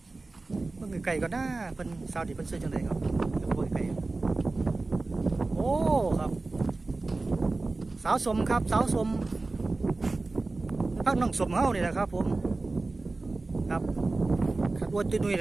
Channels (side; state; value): left; quieter; 3.4 dB